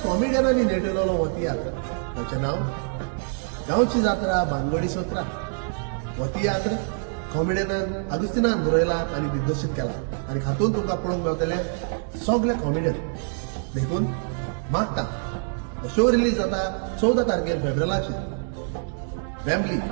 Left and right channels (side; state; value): left; silent; 62 dB below the other